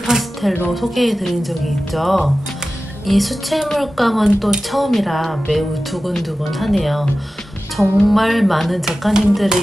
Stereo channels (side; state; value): both; normal; correlation 0.95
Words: 파스텔로 소개해 드린 적이 있죠. 이 수채물감은 또 처음이라 매우 두근두근하네요. 정말 많은